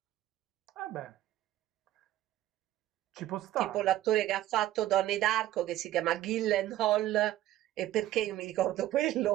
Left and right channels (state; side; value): quieter; left; 13.9 dB